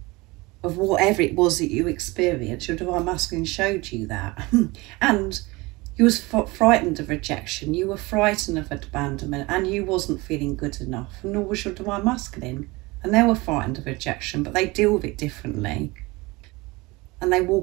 of whatever it was that you experienced. Your Divine Masculine showed you that. And you was frightened of rejection. You were frightened of abandonment, and you wasn't feeling good enough. And nor was your Divine Masculine. And they were frightened of rejection, but they deal with it differently. And they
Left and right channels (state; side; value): quieter; left; 23.1 dB